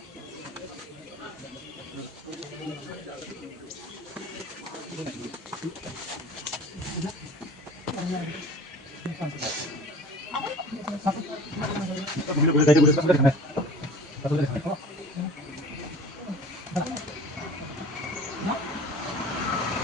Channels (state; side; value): normal; both; correlation 0.42